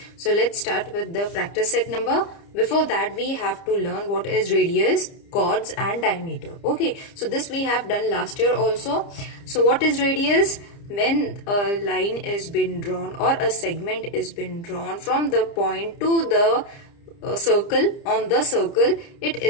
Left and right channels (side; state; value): right; late; 30 ms